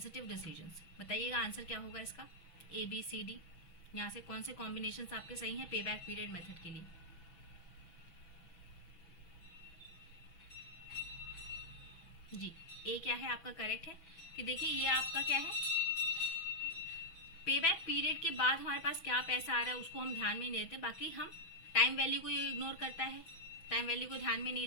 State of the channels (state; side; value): late; right; 6.1 ms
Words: decisions, बताइएगा आंसर क्या होगा इसका, ए बी सी डी, यहाँ से कौन से कॉम्बिनेशन आपके सही हैं पे बैक पीरियड मेथड के लिए। जी, ए क्या है आपका करेक्ट है, कि देखिए ये आपका क्या है, पे बैक पीरियड के बाद हमारे पास क्या पैसा आ रहा है उसको हम ध्यान में नहीं देते, बाकी हम टाइम वैल्यू को ये इग्नोर करता है, टाइम वैल्यू को ध्यान में नहीं